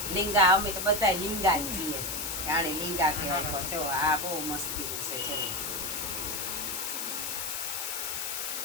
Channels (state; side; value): noise; left; hiss, 3 dB below the sound